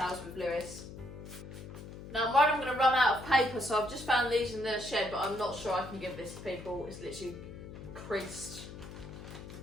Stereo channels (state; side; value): noise; left; hum, 12 dB below the sound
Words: with Lewis. Now I'm worried I'm going to run out of paper, so I've just found these in the shed, but I'm not sure I can give this to people. It's literally creased